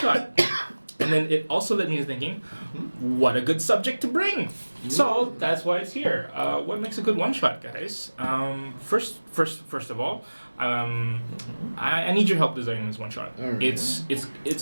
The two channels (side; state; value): both; inverted; correlation -1.00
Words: And then it also led me to thinking, what a good subject to bring. So that's why it's here. What makes a good one shot, guys? First of all, I need your help designing this one shot. Alright.